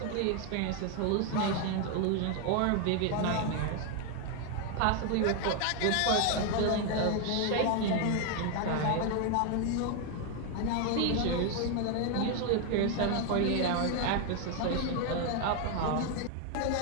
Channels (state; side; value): different; both; correlation 0.01